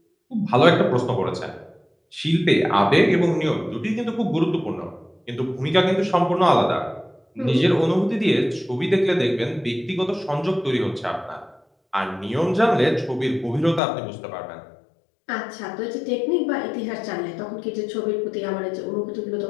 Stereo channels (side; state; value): right; drops out; at 13.8 s